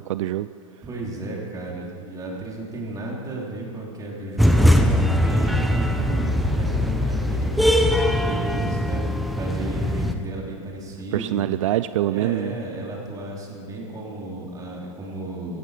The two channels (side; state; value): both; normal; correlation 0.64